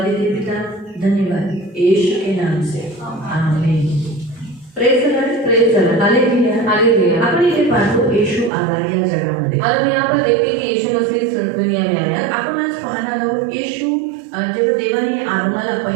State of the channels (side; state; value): left; drops out; at 8.5 s